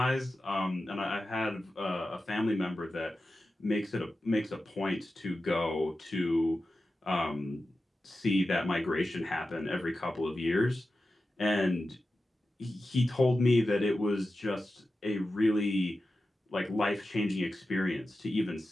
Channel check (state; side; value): normal; both; correlation 0.92